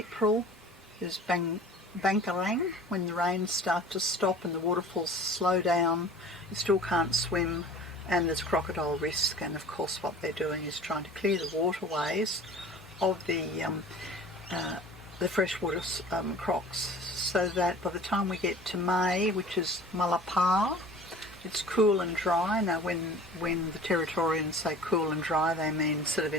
is Bankarang, when the rains start to stop and the waterfalls slow down. You still can't swim, and there's crocodile risk, and of course what they're doing is trying to clear the waterways of the freshwater crocs, so that by the time we get to May, which is Malapar, it's cool and dry. Now when the Territorians say cool and dry, they mean sort of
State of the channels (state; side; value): normal; both; correlation 0.43